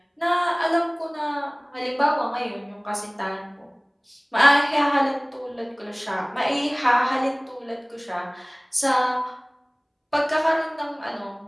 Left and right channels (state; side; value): identical; both; correlation 1.00